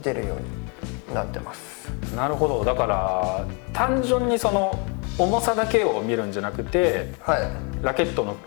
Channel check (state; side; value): quieter; right; 34.7 dB